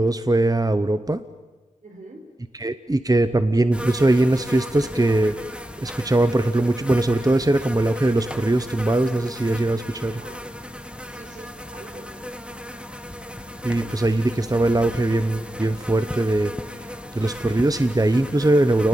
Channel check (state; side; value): normal; both; correlation 0.90